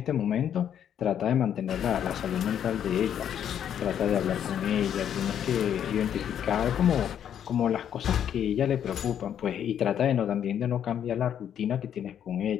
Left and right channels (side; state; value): right; quieter; 9.4 dB